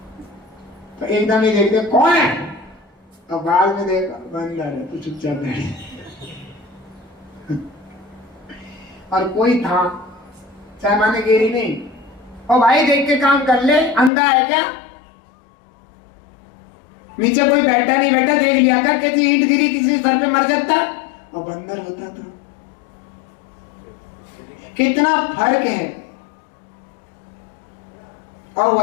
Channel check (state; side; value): drops out; right; at 14.1 s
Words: तो एकदम ही देखते कौन है, और बाद में देखा बंदर है, तो चुपचाप बैठे। और कोई था, चाहे माने गिरी नहीं, और भाई देख के काम कर ले, अंधा है क्या? नीचे कोई बैठा नहीं बैठा, देख लिया कर, कैसी ईंट गिरी किसी सर पे मर जाता, और बंदर होता था। कितना फर्क है। और